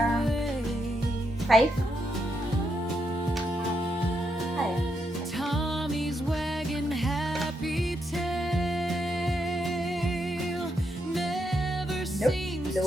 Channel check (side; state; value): both; normal; correlation 0.80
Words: 5? Tommy's wagging happy tail never seems